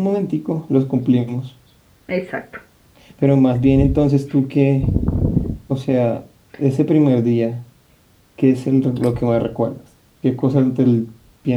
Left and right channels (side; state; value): both; identical; correlation 1.00